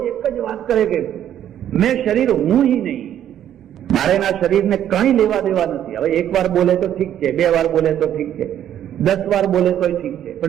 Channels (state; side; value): quieter; left; 10.6 dB